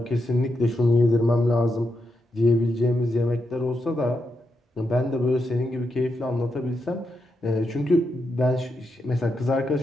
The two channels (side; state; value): both; normal; correlation 0.84